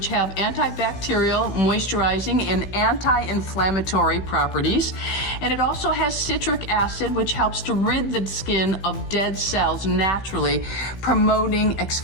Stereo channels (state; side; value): late; right; 16 ms